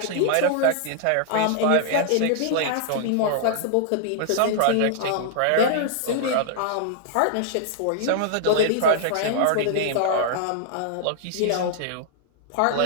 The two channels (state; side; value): different; both; correlation -0.01